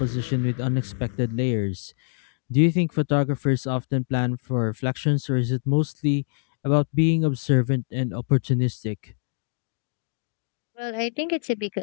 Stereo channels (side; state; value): right; silent; 57 dB below the other